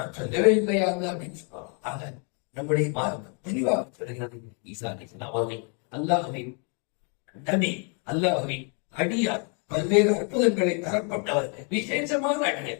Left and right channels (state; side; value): quieter; right; 38.6 dB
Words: சொல்லவே இல்லையா அப்படின்னு சொல்லுவாங்க. ஆக நம்முடைய மார்க்கம் தெளிவாக சொல்கிறது, ஈசா அலைஹிஸ்ஸலாம் அவர்கள் அல்லாஹ்வின் நபி, அல்லாஹ்வின் அடியார், பல்வேறு அற்புதங்களை தரப்பட்டவர், விசேஷமான